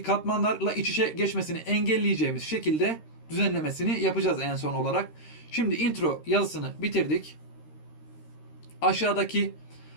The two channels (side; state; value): right; late; 13 ms